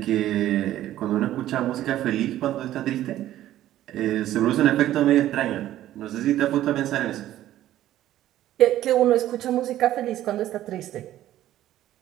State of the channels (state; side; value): quieter; left; 13.3 dB